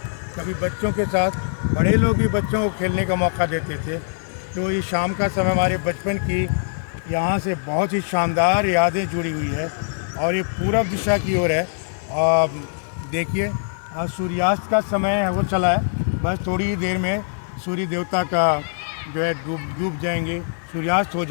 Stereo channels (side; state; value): right; silent; 64 dB below the other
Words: कभी बच्चों के साथ बड़े लोग भी बच्चों को खेलने का मौका देते थे। तो ये शाम का समय हमारे बचपन की यहाँ से बहुत ही शानदार यादें जुड़ी हुई है। और ये पूरब दिशा की ओर है। देखिए सूर्यास्त का समय है वो चला है, बस थोड़ी ही देर में सूर्य देवता का जो है डूब जाएंगे, सूर्यास्त हो